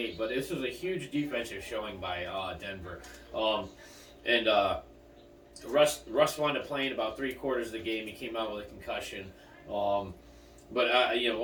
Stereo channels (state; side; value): identical; both; correlation 1.00